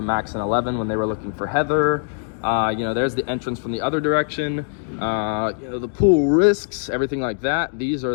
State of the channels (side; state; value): right; silent; digital silence